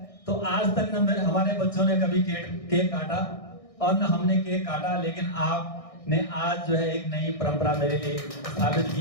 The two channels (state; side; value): late; right; 1.6 ms